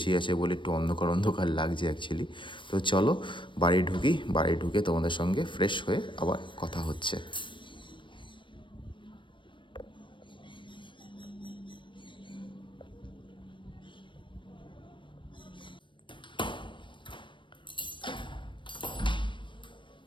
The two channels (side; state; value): right; late; 0.24 ms